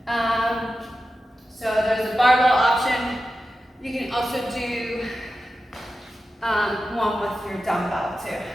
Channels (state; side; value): normal; both; correlation 0.92